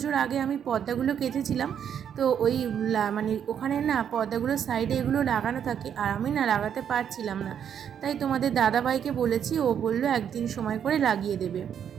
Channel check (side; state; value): left; quieter; 8.6 dB